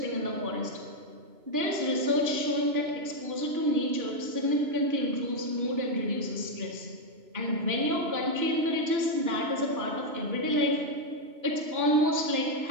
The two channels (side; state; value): left; late; 3.0 ms